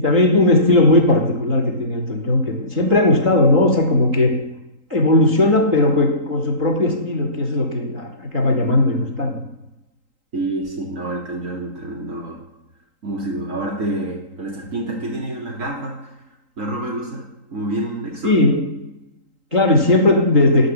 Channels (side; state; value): left; late; 3.8 ms